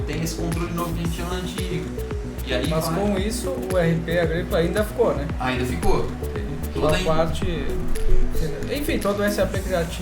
tem esse controle novo que a gente tinha no antigo. E aí Mas com isso, o RP agrícola ainda ficou, né? Ainda ficou. Toda a parte... Enfim, todo o SAP que já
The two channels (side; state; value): both; identical; correlation 1.00